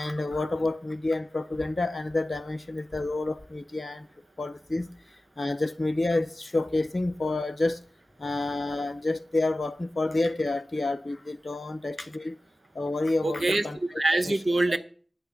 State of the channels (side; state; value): both; normal; correlation 0.95